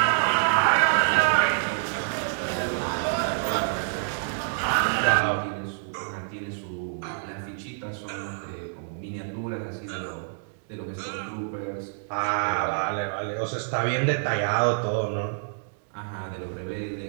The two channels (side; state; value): left; silent; digital silence